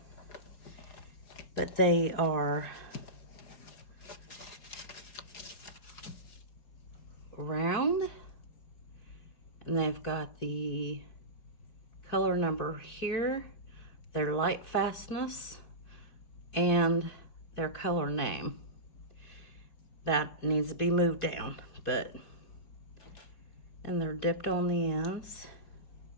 But they are round, and they've got the color number here, their light fastness, and their color name. That needs to be moved down, and they're dipped on the ends.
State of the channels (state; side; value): late; right; 4.8 ms